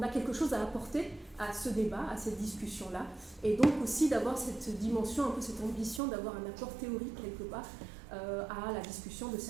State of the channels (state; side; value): drops out; left; at 6.0 s